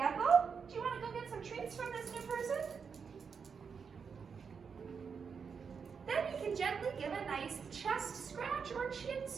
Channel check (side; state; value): left; quieter; 6.0 dB